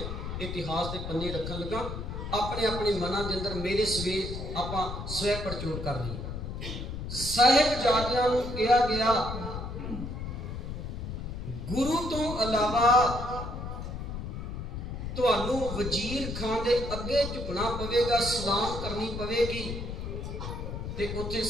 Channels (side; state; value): left; noise; rumble, 6 dB below the sound